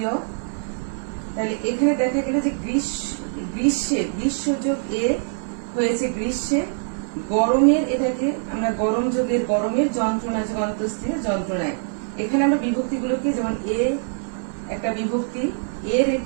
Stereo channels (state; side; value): silent; left; 58 dB below the other